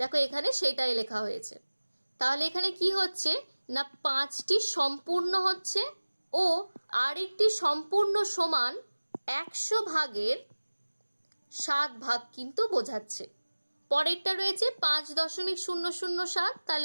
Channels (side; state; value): both; inverted; correlation -1.00